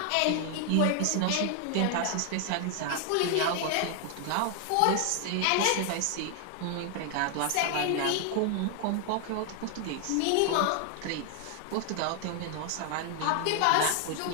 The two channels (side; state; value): both; different; correlation 0.00